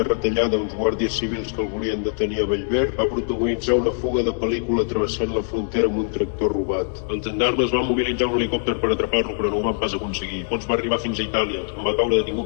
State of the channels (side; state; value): right; silent; digital silence